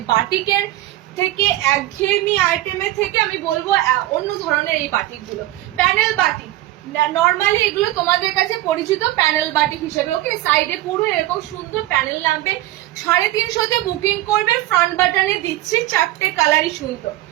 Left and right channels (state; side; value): quieter; left; 15.9 dB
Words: বাটিকের থেকে, একঘেয়েমি আইটেমের থেকে আমি বলবো অন্য ধরনের এই বাটিক গুলো। প্যানেল বাটিক নর্মালি এগুলো তোমাদের কাছে পরিচিত প্যানেল বাটিক হিসেবে। ওকে, সাইডে পুরো এরকম সুন্দর প্যানেল নামবে, 350 বুকিং করবে। ফ্রন্ট বাটনে দিচ্ছি 4টে কালারই সুন্দর,